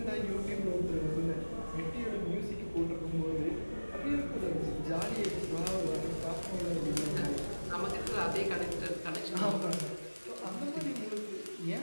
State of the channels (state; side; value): inverted; both; correlation -1.00